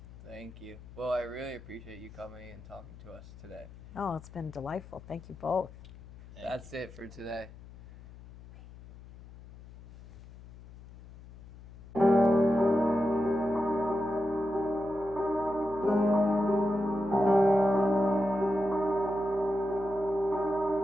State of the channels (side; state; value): left; noise; hum, 18 dB below the sound